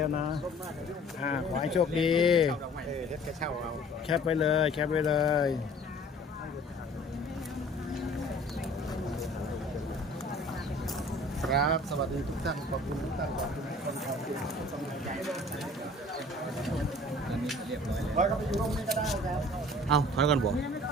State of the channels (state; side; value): normal; both; correlation 0.50